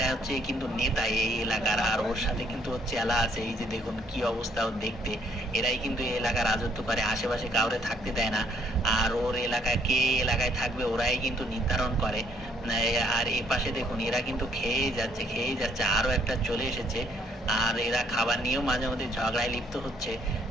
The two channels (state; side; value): normal; both; correlation 0.66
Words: হচ্ছে কিন্তু নেতা এই এলাকার, আর ওর সাথে কিন্তু ওর চেলা আছে। এই যে দেখুন কি অবস্থা ওর দেখতে। এরাই কিন্তু এই এলাকার রাজত্ব করে, আশেপাশে কাউরে থাকতে দেয় না। আর ওর এলাকায় কে এলাকায় থাকবে ওরাই কিন্তু নির্ধারণ করে। আর এই পাশে দেখুন এরা কিন্তু খেয়েই যাচ্ছে, আরো একটা চলে এসেছে। আর এরা খাবার নিয়েও মাঝে মধ্যে ঝগড়ায় লিপ্ত হচ্ছে,